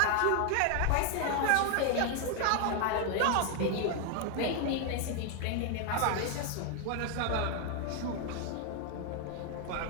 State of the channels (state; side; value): different; both; correlation 0.01